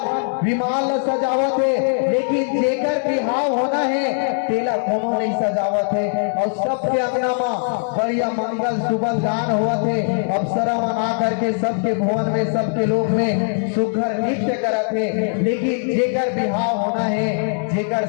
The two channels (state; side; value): silent; right; digital silence